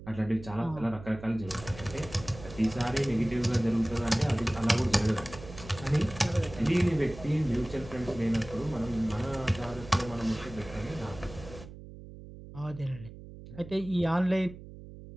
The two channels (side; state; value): right; noise; hum, 15 dB below the sound